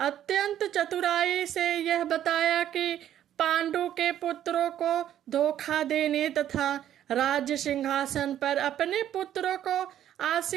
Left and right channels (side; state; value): left; quieter; 11.2 dB